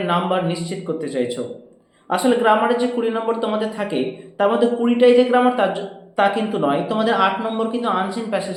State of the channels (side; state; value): both; identical; correlation 1.00